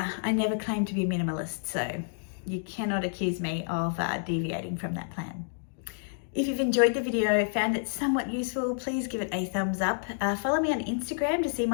never claim to be a minimalist, so you cannot accuse me of deviating from that plan. If you've enjoyed the video, found it somewhat useful, please give it a thumbs up. Follow me on Instagram to see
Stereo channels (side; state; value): right; silent; digital silence